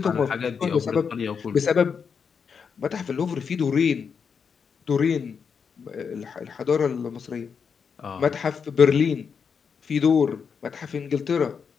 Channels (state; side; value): quieter; right; 6.3 dB